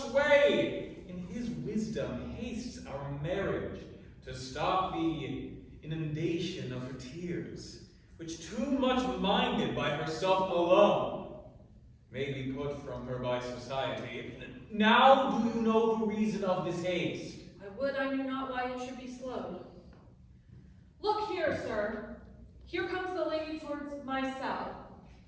In his wisdom hastes our marriage to stop the inundation of her tears, which too much minded by herself alone may be put from her by society. Now do you know the reason of this haste? I would I knew not why it should be slowed. Look here, sir. Here comes the lady towards my cell.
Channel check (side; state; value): both; identical; correlation 1.00